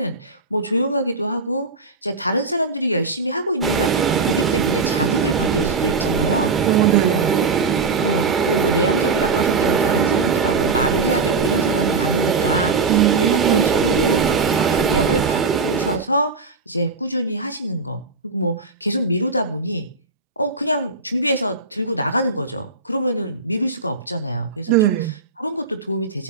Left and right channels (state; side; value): quieter; left; 4.2 dB